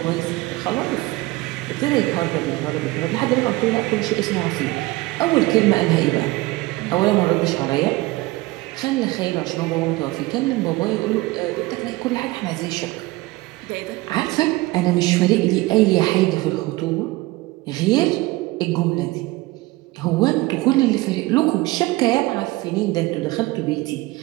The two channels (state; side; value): quieter; left; 20.5 dB